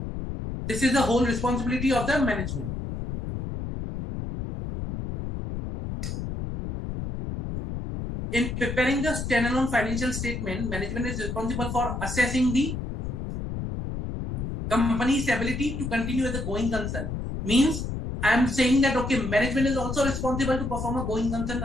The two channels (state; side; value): noise; left; rumble, 5 dB below the sound